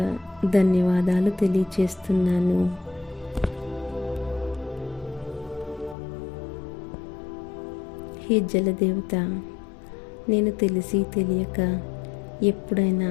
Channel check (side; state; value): right; drops out; at 6.0 s